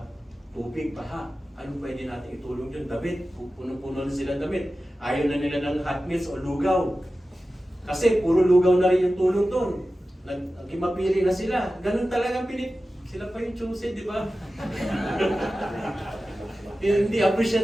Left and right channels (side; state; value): both; normal; correlation 0.94